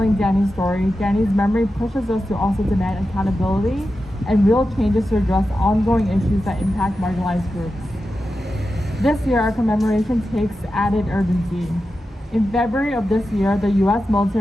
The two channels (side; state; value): both; normal; correlation 0.91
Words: Danny's story, Danny's memory pushes us to also demand accountability and real changes to address ongoing issues that impact marginalized groups. This year, our commemoration takes added urgency. In February of this year, the U.S.